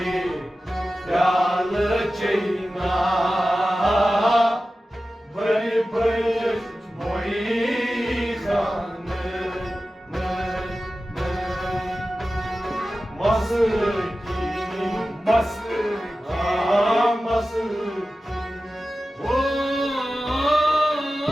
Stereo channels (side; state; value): both; normal; correlation 0.94